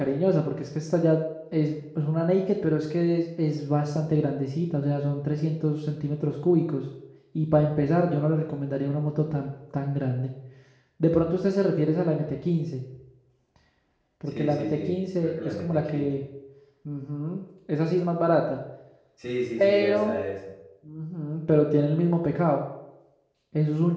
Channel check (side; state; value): both; identical; correlation 1.00